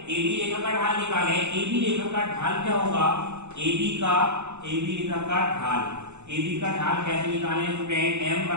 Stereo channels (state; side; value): late; left; 0.83 ms